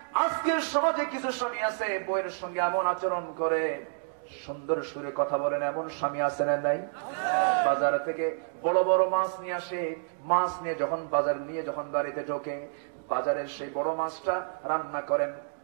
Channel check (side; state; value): left; silent; digital silence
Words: আজকের সমাজে কিছু স্বামী আছে বউয়ের সঙ্গে এমন আচরণ করে, সুন্দর সুরে কথা বলেন, এমন স্বামী আছে না নাই? বাজার থেকে বড় বড় মাছ নিয়ে আসে, মাছ নিয়ে যখন বাজার নিয়ে যখন বাড়িতে ঢোকে, বাজারের সেই বড় মাছটা রান্না করেন